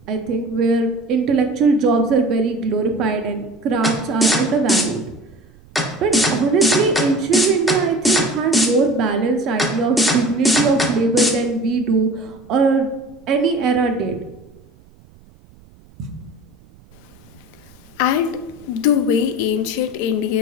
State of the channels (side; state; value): right; noise; rumble, 27 dB below the sound